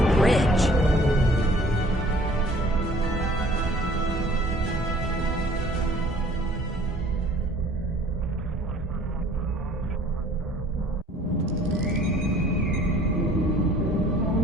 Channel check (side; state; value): both; normal; correlation 0.54